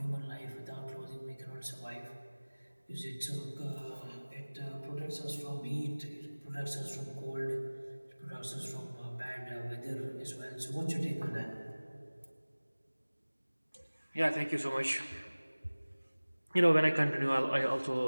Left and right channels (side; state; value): both; inverted; correlation -1.00